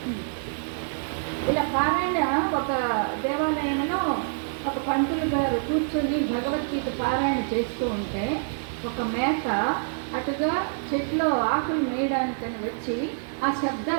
ఇలా పారాయణ ఒక దేవాలయంలో ఒక పంతులు గారు కూర్చొని భగవద్గీత పారాయణ చేస్తూ ఉంటే ఒక మేక అటుగా చెట్లో ఆకులు మేయడానికని వచ్చి ఆ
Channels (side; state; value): left; silent; 61 dB below the other